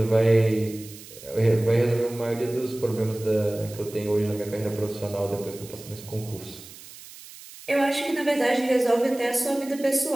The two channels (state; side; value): noise; right; hiss, 17 dB below the sound